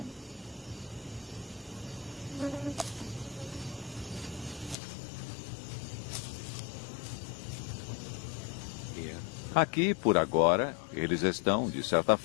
Aqui, por agora, eles estão, de certa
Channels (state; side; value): drops out; right; at 4.8 s